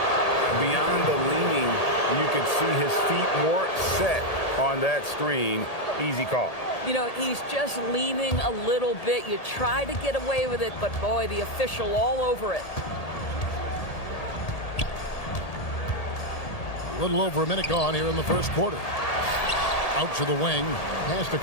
Beyond the leaning, you could see his feet weren't set on that screen. Easy call. You know, he's just leaning a little bit. You try to get away with it, but boy, the official all over it. A little over a minute gone here in the first quarter. Out to the wing. Pass to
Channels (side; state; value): right; late; 1.8 ms